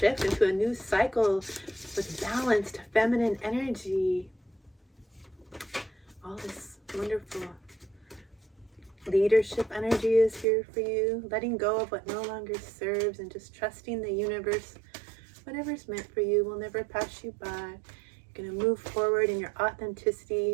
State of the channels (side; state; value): left; drops out; at 10.5 s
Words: into a new cycle with balanced feminine energy. All this wonderful leadership energy is here for you, letting go of what no longer serves and just trusting the universe. Whatever's meant for you will never pass you by. You're going to move forward in your